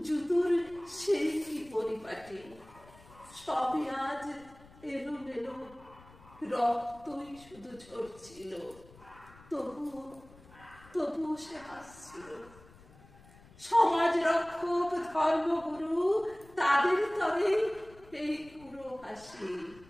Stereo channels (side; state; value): left; noise; rumble, 23 dB below the sound